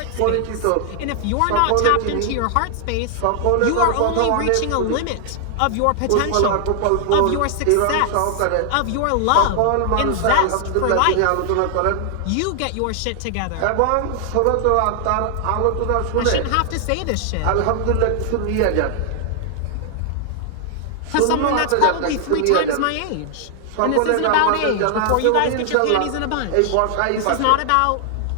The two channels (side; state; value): both; different; correlation 0.00